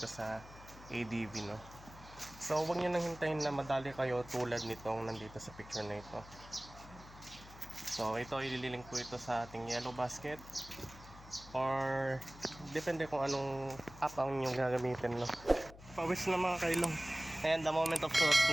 sa ADV, no? So huwag nyo nang hintayin na madali kayo tulad nitong nandito sa picture na ito. So ito, ililink ko ito sa ating yellow basket or depende kung anong app ang inyong gagamitin, no? Pawis na mga kailong. Ayan, the moment of truth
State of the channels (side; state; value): left; noise; hum, 18 dB below the sound